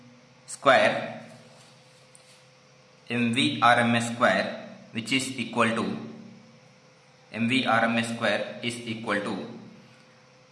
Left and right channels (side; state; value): both; identical; correlation 1.00